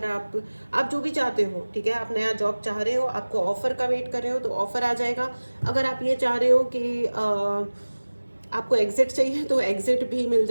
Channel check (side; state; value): both; inverted; correlation -1.00